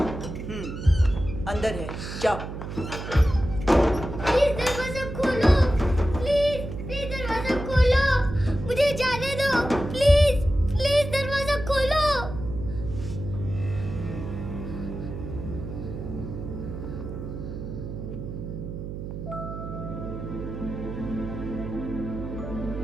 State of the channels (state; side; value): noise; right; hum, 7 dB below the sound